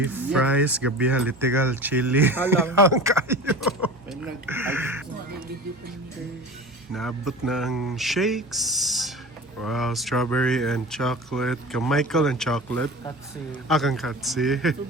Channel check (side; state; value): both; normal; correlation 0.35